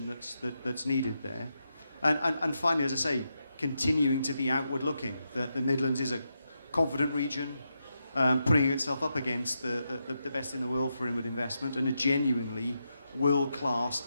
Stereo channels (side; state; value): both; inverted; correlation -0.85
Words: that's needed there. And finally, as I say, continuing to be outward looking, that the Midlands is a confident region, putting itself up against the best in the world for inward investment, and a genuinely world-class,